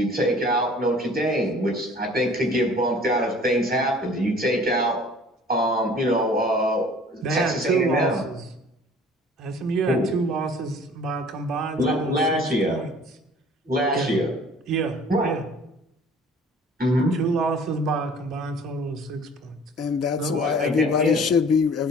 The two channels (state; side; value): normal; both; correlation 0.50